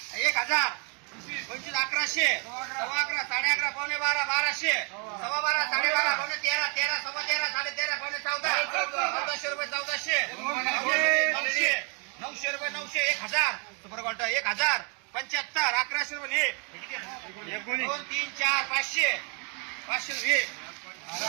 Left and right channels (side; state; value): left; quieter; 36.0 dB